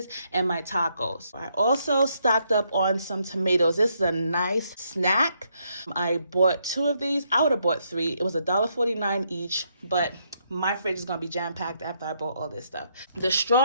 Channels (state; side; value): inverted; both; correlation -0.75